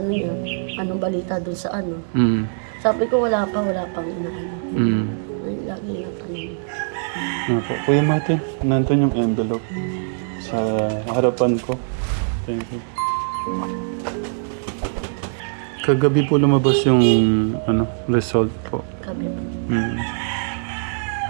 yun, anong balita dun sa ano. Mm. Sabi ko wala pang ano. Mm. Ayun, lagi yung tanong. Opo. Kuya Martin, nandun yung envelope sa harapan ko. Thank you. Kagabi po lumabas yung result po. Sabi ko. Mm.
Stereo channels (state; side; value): silent; left; digital silence